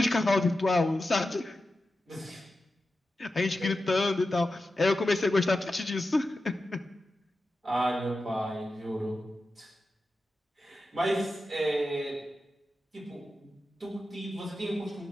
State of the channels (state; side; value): normal; both; correlation 0.92